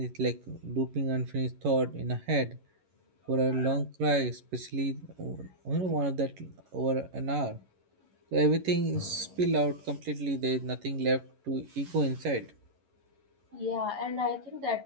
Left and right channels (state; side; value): late; left; 11 ms